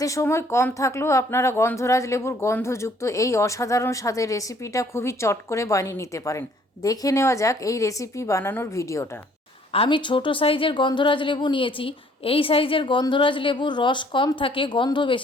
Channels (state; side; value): normal; both; correlation 0.61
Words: সময় কম থাকলেও আপনারা গন্ধরাজ লেবুর গন্ধযুক্ত এই অসাধারণ স্বাদের রেসিপিটা খুবই চট করে বানিয়ে নিতে পারেন। দেখে নেওয়া যাক এই রেসিপি বানানোর ভিডিওটা। আমি ছোট সাইজের গন্ধরাজ লেবু নিয়েছি। এই সাইজের গন্ধরাজ লেবুর রস কম থাকে, গন্ধ